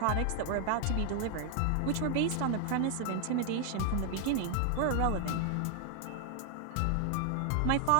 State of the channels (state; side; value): different; both; correlation 0.00